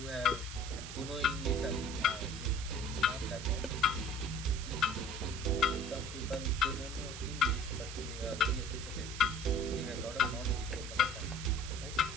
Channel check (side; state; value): right; noise; hiss, 10 dB below the sound